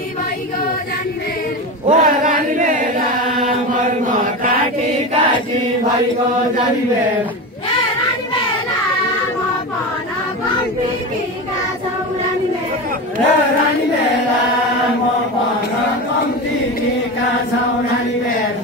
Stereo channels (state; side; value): normal; both; correlation 0.23